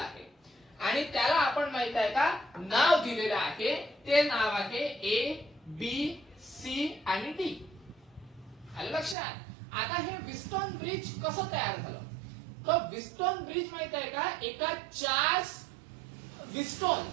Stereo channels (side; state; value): left; drops out; at 9.2 s